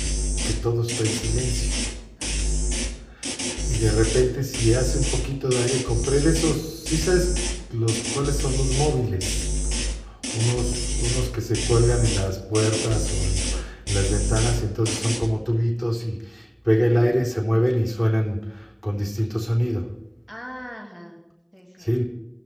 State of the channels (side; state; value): both; identical; correlation 1.00